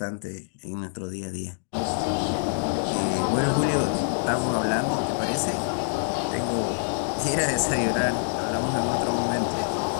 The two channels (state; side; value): silent; right; digital silence